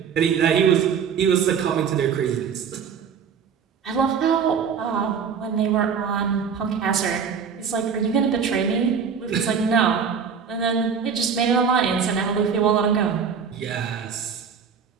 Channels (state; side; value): quieter; left; 6.7 dB